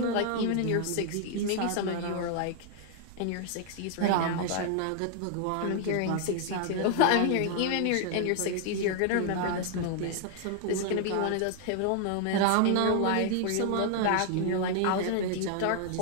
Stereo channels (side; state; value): both; different; correlation 0.00